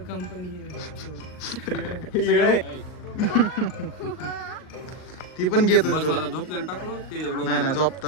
कंपनी ती पण घेत होती तुला? झोपलेला टाकलो ते नाही नाही,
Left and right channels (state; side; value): late; right; 39 ms